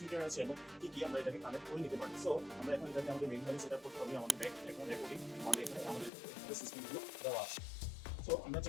আছে এবং কি কি আমরা এটাকে কানেক্ট করে নিতে পারি। সো আমরা এখন এটাকে আমাদের মেইন সেট আপ করতে হবে। আমাদের ব্যাক এখন রেকর্ডিং আমাদের এখানে আমাদের সিস্টেমগুলো দেওয়া আছে। সো আমরা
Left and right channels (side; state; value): right; drops out; at 6.1 s